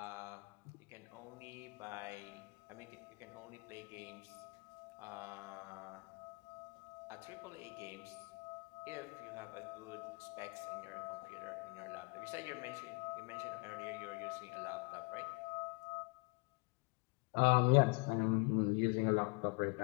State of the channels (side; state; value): right; quieter; 32.0 dB